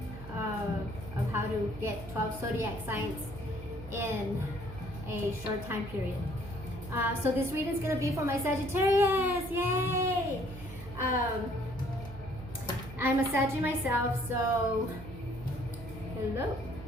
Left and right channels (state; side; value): noise; right; hum, 13 dB below the sound